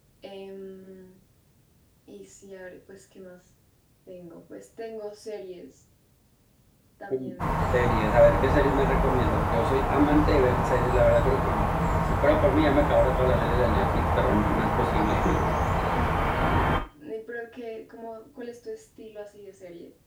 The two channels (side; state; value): both; identical; correlation 1.00